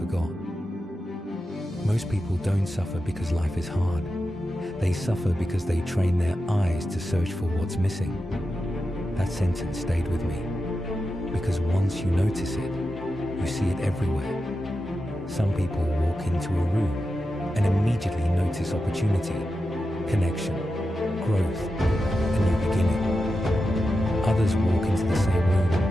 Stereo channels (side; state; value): both; normal; correlation 0.90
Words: Most people don't suffer because life is hard. They suffer because they train their eyes to search for what's missing. That sentence stayed with me, because once you notice it, you see it everywhere. Some people walk into a room and immediately notice opportunity, connection, growth, a new beginning. Others walk into the same room